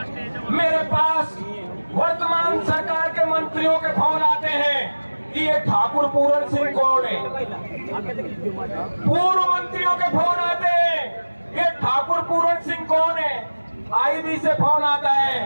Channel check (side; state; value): both; inverted; correlation -1.00